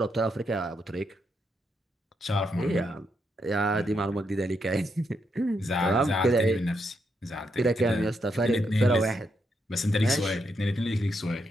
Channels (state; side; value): normal; both; correlation 0.80